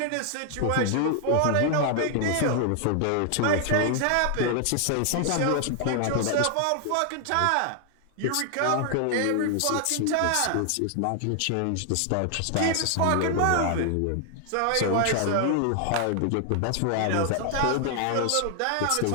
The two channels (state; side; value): different; both; correlation 0.00